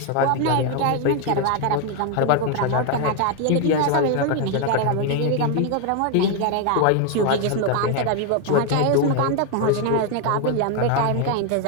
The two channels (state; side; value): different; both; correlation 0.01